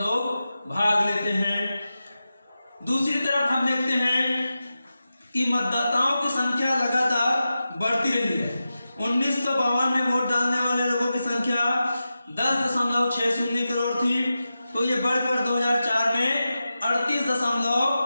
भाग लेते हैं। दूसरी तरफ हम देखते हैं कि मतदाताओं की संख्या लगातार बढ़ती रही है। 1952 में वोट डालने वाले लोगों की संख्या 10.60 करोड़ थी, तो ये बढ़कर 2004 में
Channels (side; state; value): both; inverted; correlation -0.92